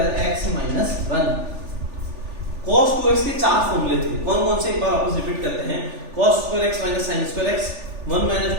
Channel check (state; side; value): late; left; 3.4 ms